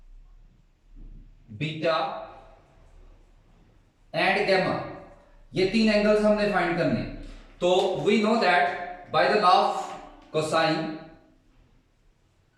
बीटा एंड गैमा। ये 3 एंगल्स हमने फाइंड करने। तो we know that by the law of cosine,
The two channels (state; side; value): identical; both; correlation 1.00